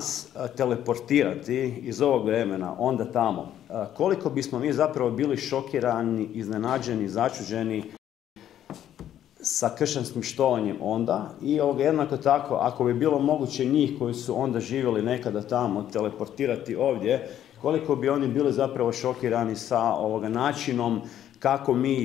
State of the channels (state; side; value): quieter; right; 11.0 dB